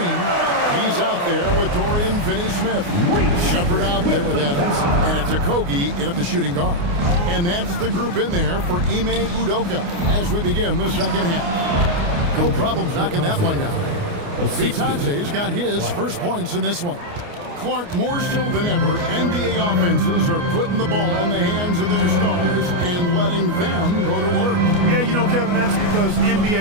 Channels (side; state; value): left; late; 29 ms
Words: He's out there with Dorian Finney-Smith. Shepard out there with Adams. And it's Okogie in at the shooting guard. And that's the group in there for Ime Udoka as we begin the second half. No problems knocking that one down. Vitante's got his first points in this one. Clark, more so than ever, NBA offenses are putting the ball in the hands of their stars and letting them go to work. Yeah, you know, Kevin, that's because